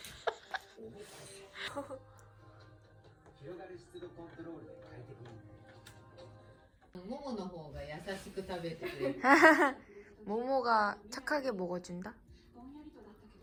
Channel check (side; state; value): both; identical; correlation 1.00